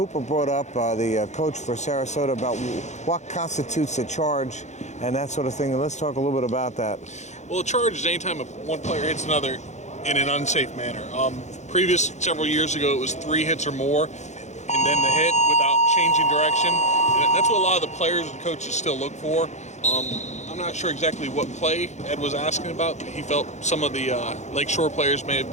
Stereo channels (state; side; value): late; right; 0.33 ms